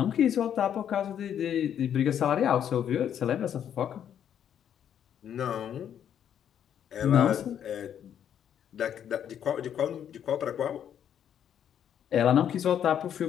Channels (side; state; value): right; quieter; 9.4 dB